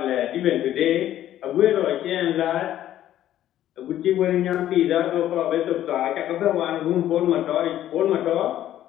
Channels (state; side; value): quieter; right; 12.3 dB